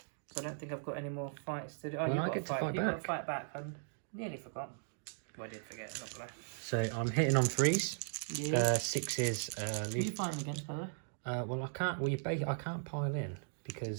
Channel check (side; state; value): left; silent; digital silence